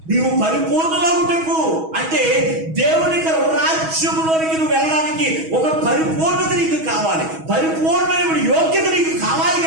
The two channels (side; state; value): left; late; 6.2 ms